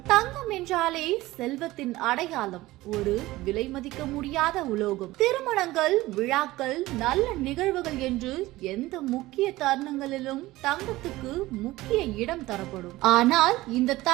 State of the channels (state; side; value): quieter; left; 18.1 dB